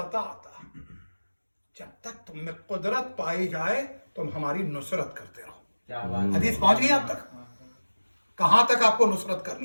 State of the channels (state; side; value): inverted; both; correlation -1.00